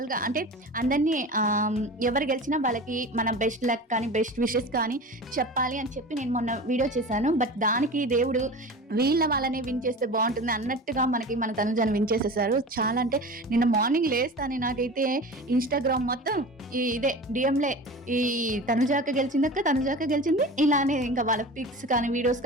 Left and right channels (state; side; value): normal; both; correlation 0.34